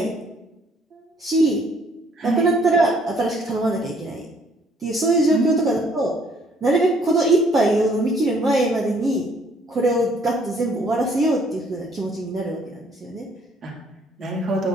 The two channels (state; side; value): normal; both; correlation 0.63